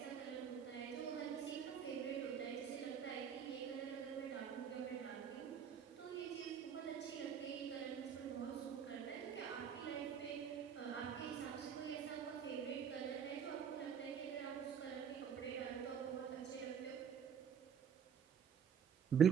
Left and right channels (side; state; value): left; quieter; 7.8 dB